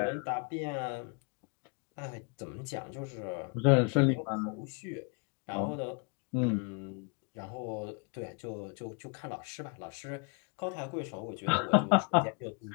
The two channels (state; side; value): quieter; right; 36.5 dB